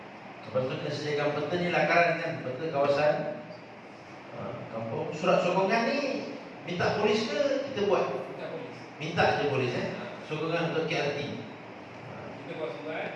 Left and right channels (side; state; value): both; identical; correlation 1.00